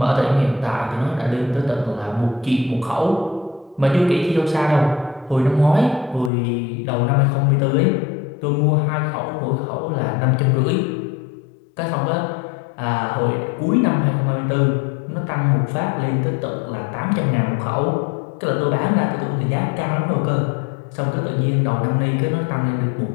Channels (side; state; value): right; drops out; at 6.3 s